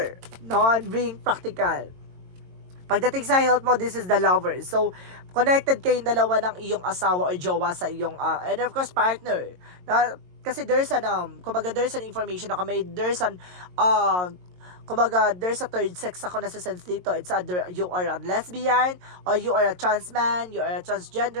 no? And being practical. Pagdating sa health mo, this is the lover. So, connected kayong dalawa ng iyong asawa o jowa sa iyong, and of course, partner. Na, kasi there's an, kumbaga, there's an information na there's an, kumbaga, there's a third sex ako na sa sense dito. It's either you are a lesbian, or you are a trans man, you are a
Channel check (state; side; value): late; left; 22 ms